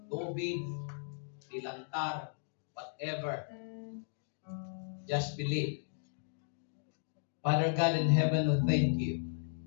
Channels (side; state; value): right; silent; digital silence